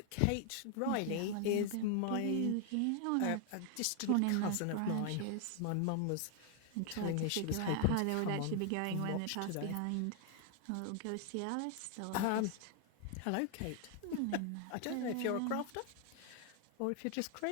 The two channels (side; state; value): both; different; correlation 0.00